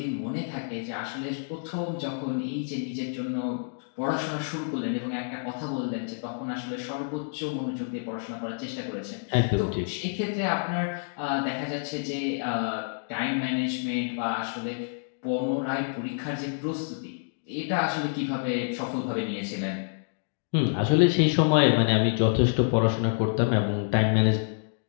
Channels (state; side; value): silent; right; digital silence